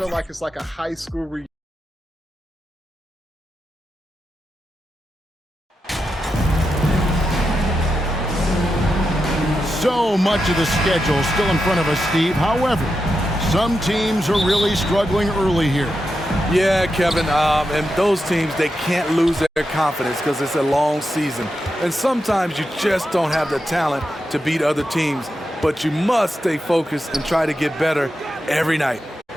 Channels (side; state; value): both; normal; correlation 0.87